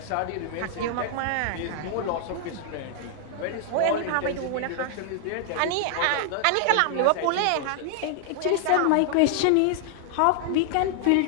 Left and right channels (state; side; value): different; both; correlation 0.00